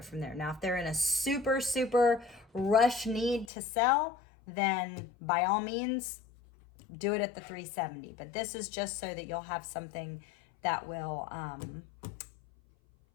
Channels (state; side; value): drops out; right; at 3.5 s